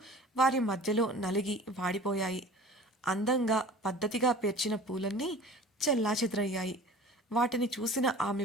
వారి మధ్యలో నలిగి వాడిపోయాయి. అందంగా పద్ధతిగా పేర్చిన పూలన్నీ చెల్లాచెదరయ్యాయి. వాటిని చూసిన ఆమె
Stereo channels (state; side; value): normal; both; correlation 0.43